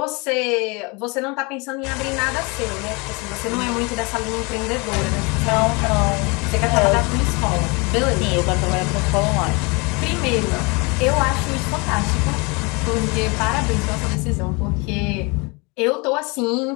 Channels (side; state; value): right; quieter; 28.6 dB